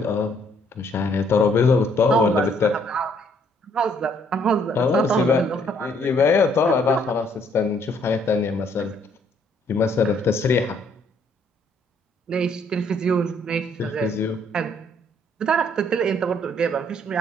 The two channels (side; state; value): both; normal; correlation 0.66